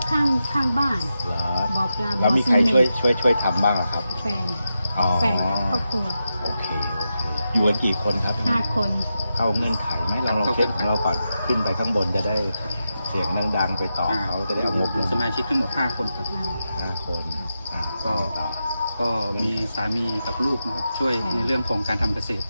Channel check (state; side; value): inverted; both; correlation -0.88